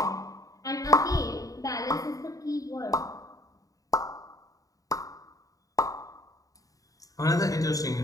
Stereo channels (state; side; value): late; right; 0.17 ms